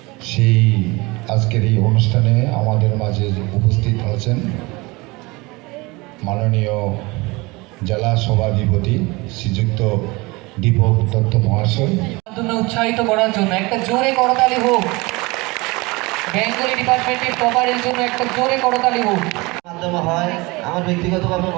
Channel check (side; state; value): left; quieter; 24.1 dB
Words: সেই আজকের এই অনুষ্ঠানে আমাদের মাঝে উপস্থিত আছেন মাননীয় জেলা সভাধিপতি শ্রীযুক্ত দীপক দত্ত মহাশয়। উৎসাহিত করার জন্য একটা জোরে করতালি হোক। বেঙ্গলি ডিপার্টমেন্টের টপারের জন্য একটা জোরে করতালি হোক। মাধ্যমে হয় আমার ব্যক্তিগতভাবে